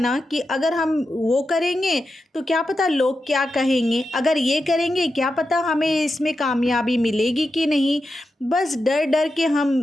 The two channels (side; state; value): both; normal; correlation 0.89